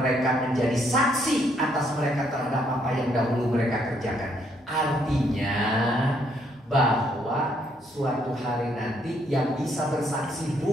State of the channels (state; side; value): normal; both; correlation 0.71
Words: menjadi saksi atas mereka terhadap apa yang dahulu mereka kerjakan. Artinya bahwa suatu hari nanti yang bisa bersaksi